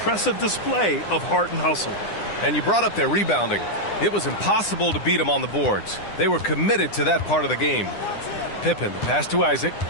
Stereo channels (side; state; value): right; late; 9.9 ms